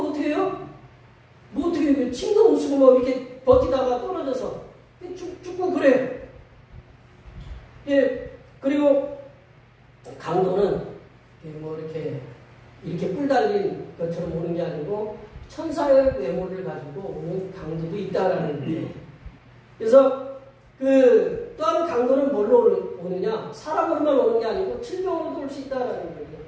어떻게 해요? 뭐 어떻게 해요? 침도 못 쓰고 뭐 이렇게 버티다가 떨어져서 죽고 그래요. 예, 그리고 강도는 뭐 이렇게 뿔 달린 것처럼 오는 게 아니고 천사의 외모를 가지고 오는 강도도 있다라는 거예요. 그래서 또한 강도는 뭘로 오느냐? 사람으로만 오는 게 아니고 질병으로도 올 수 있다라는 거예요.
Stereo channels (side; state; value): both; identical; correlation 1.00